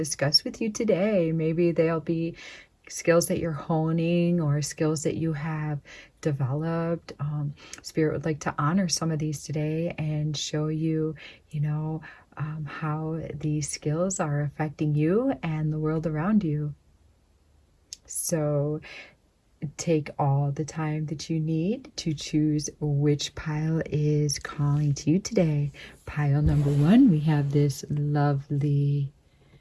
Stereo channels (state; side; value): identical; both; correlation 1.00